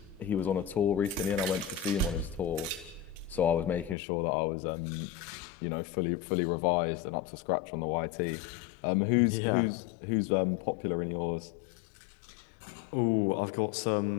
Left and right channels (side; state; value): right; drops out; at 4.0 s